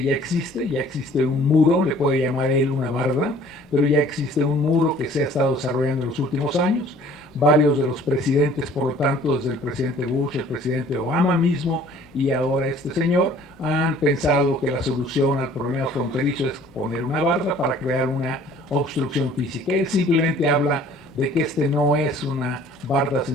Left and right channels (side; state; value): both; normal; correlation 0.53